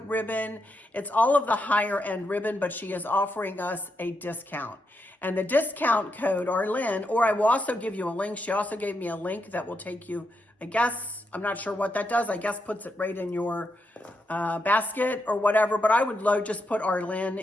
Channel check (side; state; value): both; normal; correlation 0.83